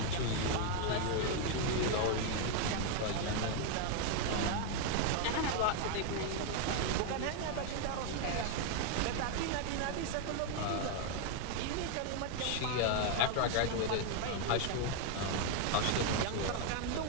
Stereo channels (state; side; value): different; both; correlation 0.00